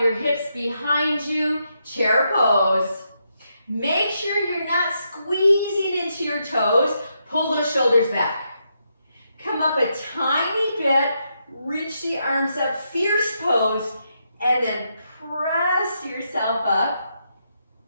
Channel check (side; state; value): both; inverted; correlation -0.81